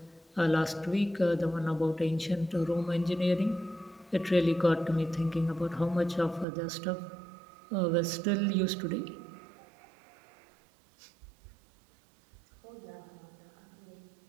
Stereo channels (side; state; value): left; drops out; at 6.5 s